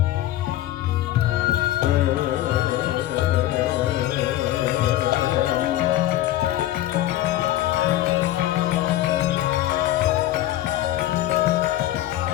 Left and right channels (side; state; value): right; quieter; 14.1 dB